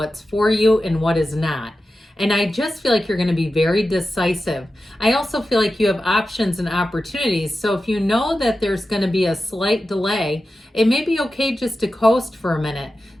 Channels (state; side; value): normal; both; correlation 0.93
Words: for you and what is not. And I just feel like you're going to be very decisive. I also feel like you have options and opportunities. So if you know that there's going to be a slight delay, it may be okay just to coast for a minute.